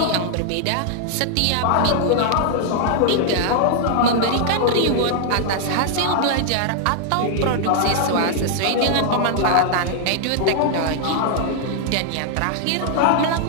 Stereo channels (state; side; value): different; both; correlation 0.00